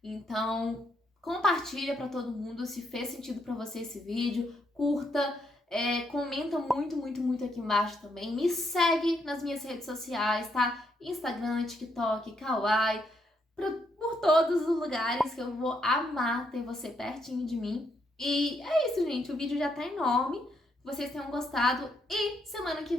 Então, compartilha pra todo mundo se fez sentido pra você esse vídeo, curta, comenta muito, muito, muito aqui embaixo também. Me segue nas minhas redes sociais, tá? Instagram, TikTok, Kawaii, por todos os lugares que eu vou amar ter você pertinho de mim. E é isso, gente. O vídeo já tá enorme. Que vocês tenham gostado. E semana que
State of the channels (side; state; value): both; normal; correlation 0.76